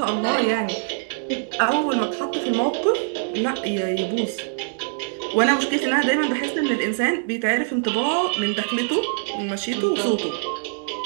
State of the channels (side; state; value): left; silent; digital silence